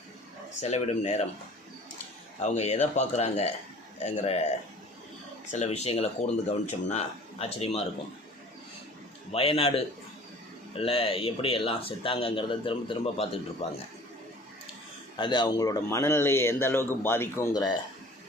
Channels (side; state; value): both; normal; correlation 0.47